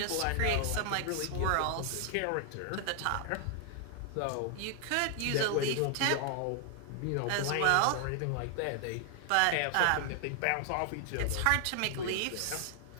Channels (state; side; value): different; both; correlation 0.00